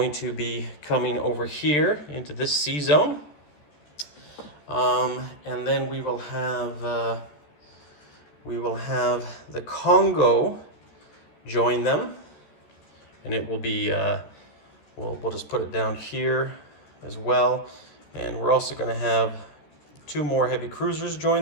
to be coming over here into this sea zone. And then we will have the Congo join them, and it will be we'll just put it down here as well. And we're also going to have 2 more heavy cruisers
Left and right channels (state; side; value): late; right; 14 ms